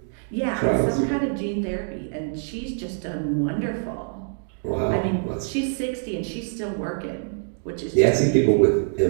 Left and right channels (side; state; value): left; silent; digital silence